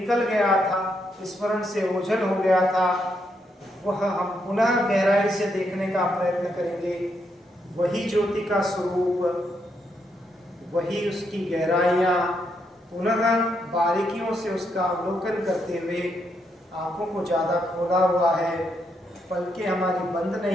गया था, स्मरण से ओझल हो गया था, वह हम पुनः गहराई से देखने का प्रयत्न करेंगे। वही ज्योति का स्वरूप, वही उसकी गहराइयाँ, पुनः बारीकियों से उसका अवलोकन करते हुए आंखों को ज़्यादा खोला हुआ है पलकें हमारी बंद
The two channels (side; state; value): both; normal; correlation 0.78